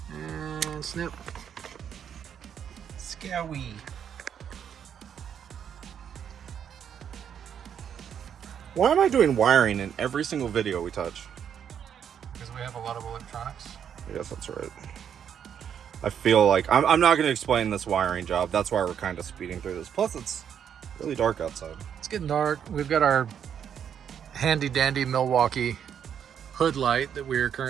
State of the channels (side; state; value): left; quieter; 8.5 dB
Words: and snip. Scowie. Why am I doing wiring in every single video we touch? Because we have a lot of electronics. I guess that's right. I feel like I'm not going to explain this wiring job. That's why we're kind of speeding through this. Plus, it's really dark outside. It's getting dark. We've got our handy dandy Milwaukee hood light that we're